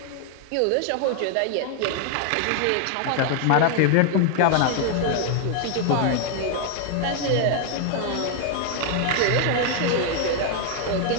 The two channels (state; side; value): different; both; correlation 0.00